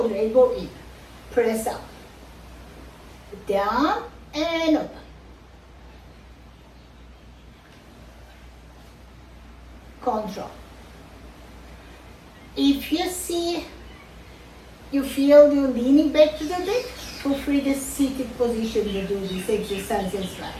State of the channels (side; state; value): both; identical; correlation 1.00